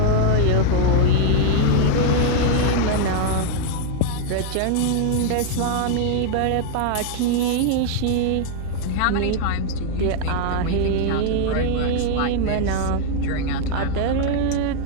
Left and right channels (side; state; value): both; different; correlation 0.00